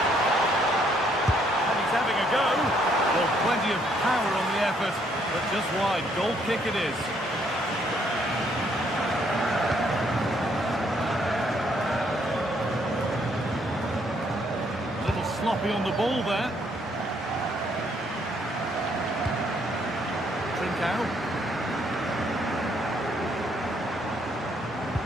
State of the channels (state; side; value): normal; both; correlation 0.69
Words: Plenty of power on the effort, but just wide. Goal kick it is. A little sloppy on the ball there. Trincao.